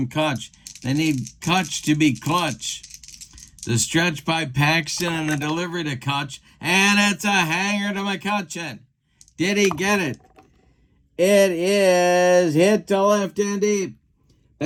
Kutch. They need Kutch to be clutch. The stretch by Paxton and the delivery to Kutch. And it's a hanger to McCutcheon. Did he get it? It is hit to left and deep.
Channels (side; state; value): both; identical; correlation 1.00